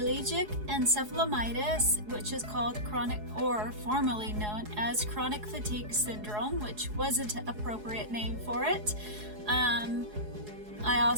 encephalomyelitis, which is called chronic, or formerly known as chronic fatigue syndrome, which wasn't an appropriate name for it. I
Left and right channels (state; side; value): late; left; 4.8 ms